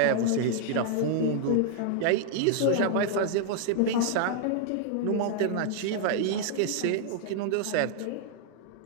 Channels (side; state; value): both; different; correlation 0.00